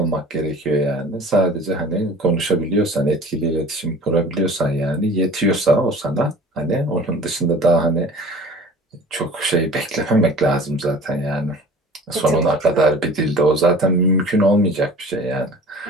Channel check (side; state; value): both; normal; correlation 0.44